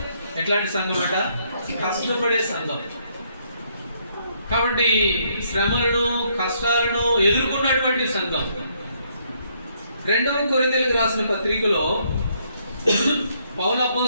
ఎట్లాంటి సంఘం అంట? కష్టపడే సంఘం. కాబట్టి శ్రమలను, కష్టాలను ఎదుర్కొన్నటువంటి సంఘం. 2వ కొరింథీయులకు రాసిన పత్రికలో పౌలు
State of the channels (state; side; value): inverted; both; correlation -0.71